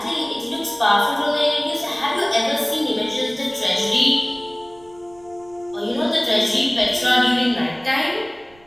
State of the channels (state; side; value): noise; right; rumble, 28 dB below the sound